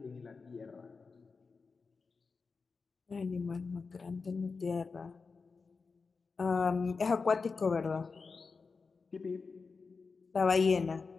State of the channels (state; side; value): quieter; right; 4.7 dB